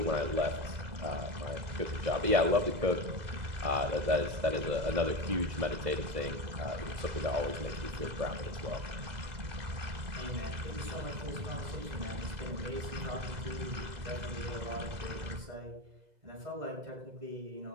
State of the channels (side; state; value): left; late; 2.0 ms